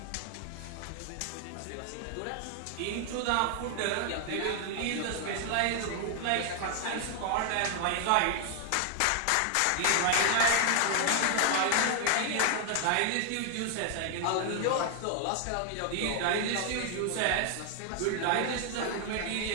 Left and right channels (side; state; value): both; different; correlation 0.00